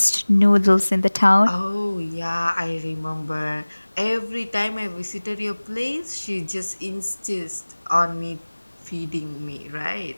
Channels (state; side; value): inverted; both; correlation -1.00